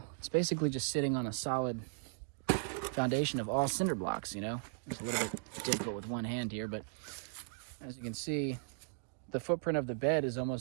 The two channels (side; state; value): left; silent; digital silence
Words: it's basically just sitting on a solid foundation of all cinder blocks, you know? It's a little bit difficult with one hand here, but as you can see, the footprint of the bed is